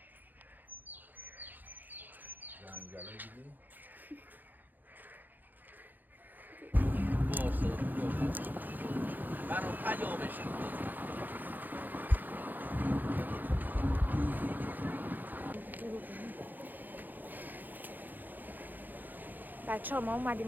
جنگله دیدی؟ باشه برام پیامش بچه ها ما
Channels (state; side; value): late; left; 0.086 ms